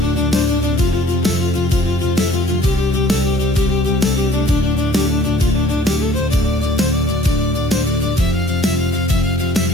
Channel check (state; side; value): normal; both; correlation 0.54